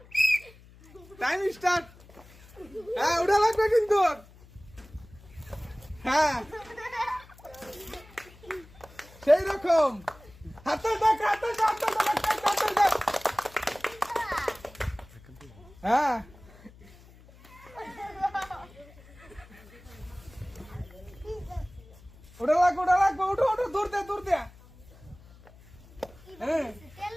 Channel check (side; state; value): left; noise; hum, 23 dB below the sound